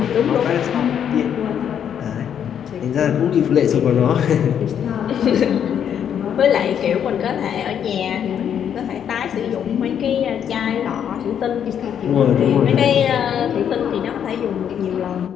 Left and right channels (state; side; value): quieter; right; 8.8 dB